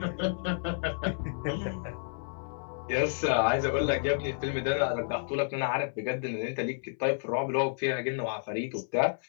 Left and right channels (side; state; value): right; silent; 57 dB below the other